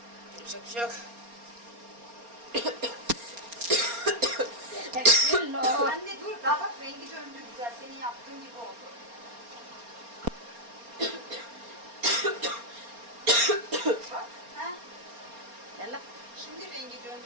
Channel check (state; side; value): late; left; 4.3 ms